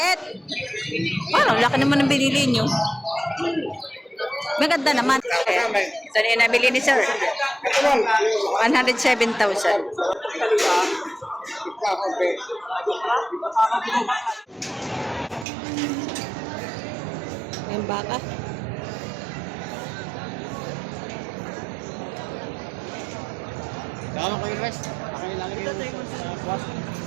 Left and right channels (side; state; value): left; drops out; at 15.5 s